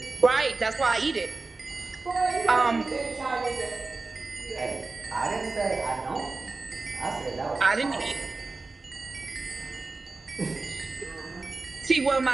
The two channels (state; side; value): quieter; left; 3.7 dB